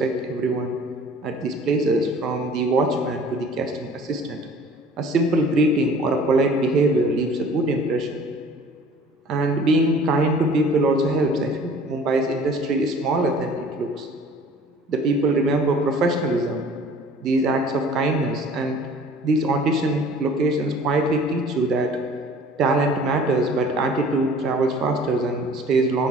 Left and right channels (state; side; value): normal; both; correlation 0.49